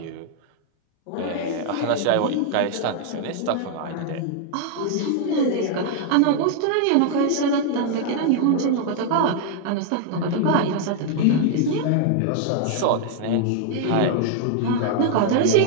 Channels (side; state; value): both; different; correlation 0.00